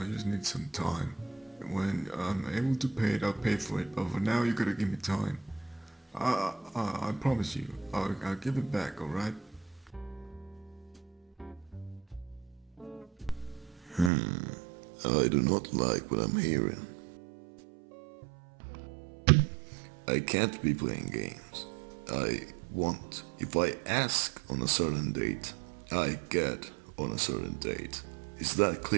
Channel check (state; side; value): drops out; left; at 14.1 s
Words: just need some time. When I'm able to pay it, I'll pay for it. But for now, you gotta give me time. I promise you, I'll give it back. All right? I do not like what I'm hearing. I can't be playing games. If I ask on a certain date, I get on a certain date. Is that